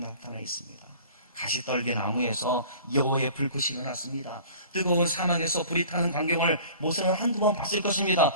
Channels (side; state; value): both; inverted; correlation -0.45